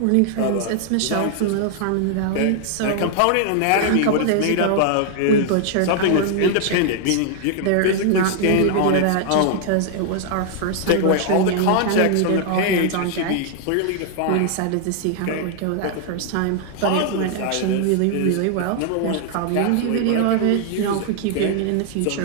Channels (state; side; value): different; both; correlation 0.00